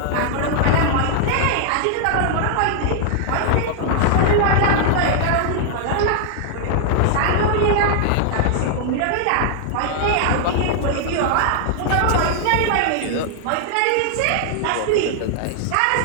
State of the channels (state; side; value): different; both; correlation -0.01